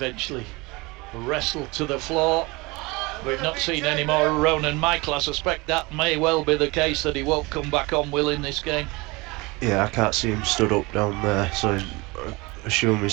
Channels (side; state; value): left; quieter; 24.5 dB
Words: wrestled to the floor. We've not seen any more of Ronan Michael. I suspect that may well be the case, that he won't come back on, Will, in this game. Yeah, I can't see him stood up down there, so I assume